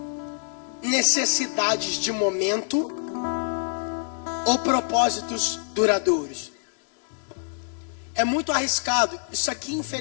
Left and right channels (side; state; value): right; silent; digital silence